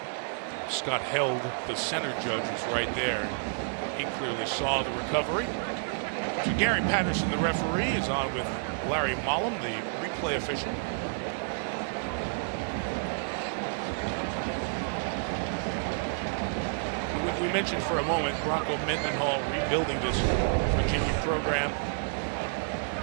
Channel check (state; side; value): silent; left; digital silence